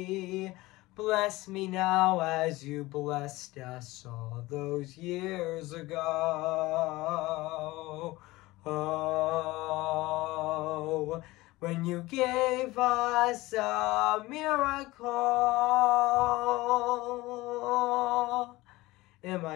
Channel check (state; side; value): quieter; right; 19.7 dB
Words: Bless me now as you blessed us all those years ago. Oh, when you gave us a miracle. Am